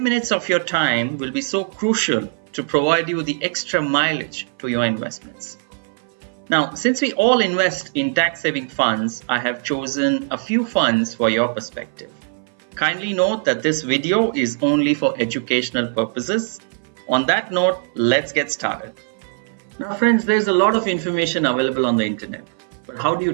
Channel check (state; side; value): silent; left; 60 dB below the other